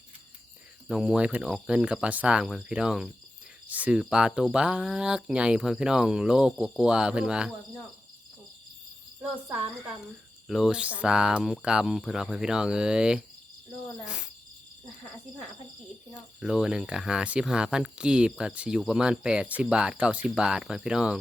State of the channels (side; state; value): both; normal; correlation 0.92